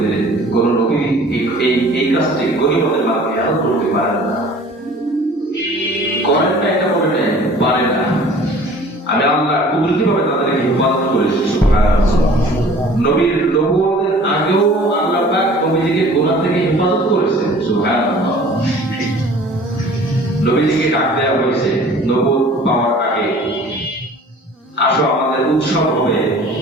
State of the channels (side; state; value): both; normal; correlation 0.48